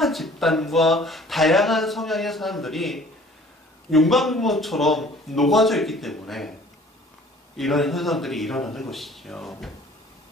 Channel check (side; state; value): both; normal; correlation 0.51